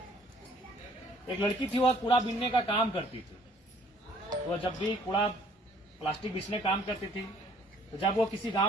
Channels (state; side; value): normal; both; correlation 0.58